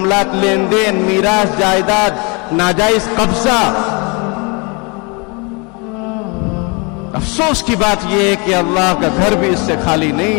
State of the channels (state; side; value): quieter; right; 30.8 dB